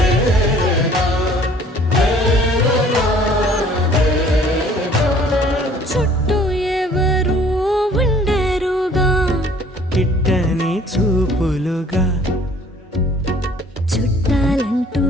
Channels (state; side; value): normal; both; correlation 0.55